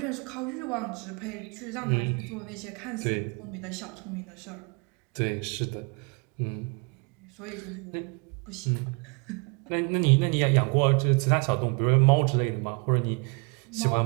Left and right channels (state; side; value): quieter; left; 32.6 dB